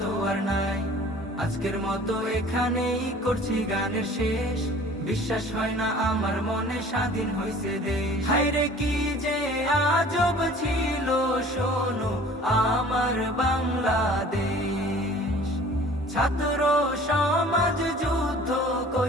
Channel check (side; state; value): both; normal; correlation 0.48